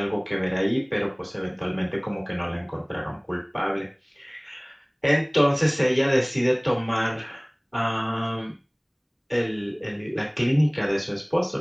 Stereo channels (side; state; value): both; identical; correlation 1.00